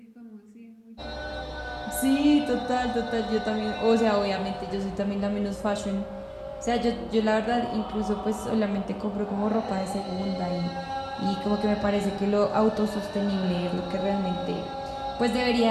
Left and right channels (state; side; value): identical; both; correlation 1.00